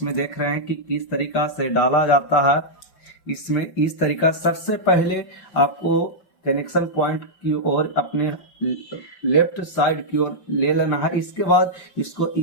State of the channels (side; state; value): right; late; 5.3 ms